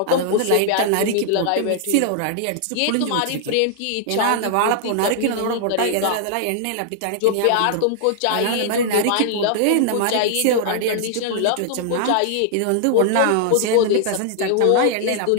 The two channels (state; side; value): different; both; correlation -0.01